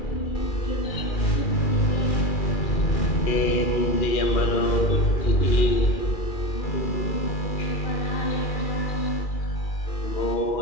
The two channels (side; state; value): right; late; 2.4 ms